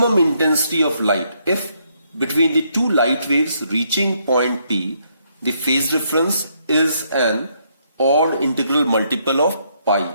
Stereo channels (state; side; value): inverted; both; correlation -0.73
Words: intensity of light if between the two light waves reaching point P the phase difference is an odd integral multiple of